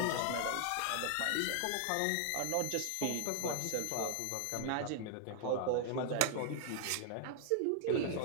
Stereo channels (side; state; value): both; different; correlation 0.00